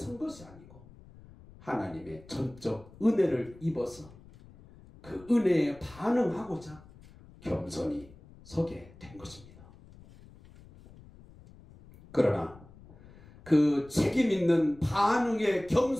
것이 아니고 하나님의 전적 은혜를 입어서 그 은혜에 반응하고자 겸손히 서게 된 것입니다. 그러나 그 책임 있는 반응에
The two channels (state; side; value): noise; left; rumble, 22 dB below the sound